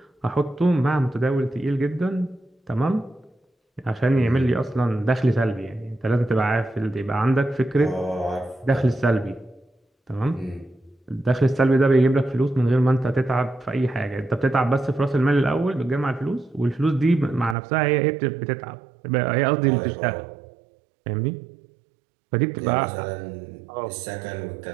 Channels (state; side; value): drops out; left; at 17.6 s